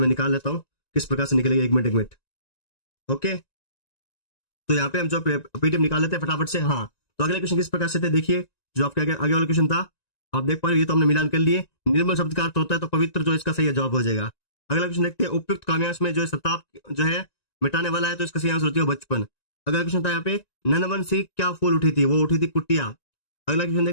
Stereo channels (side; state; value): right; late; 1.9 ms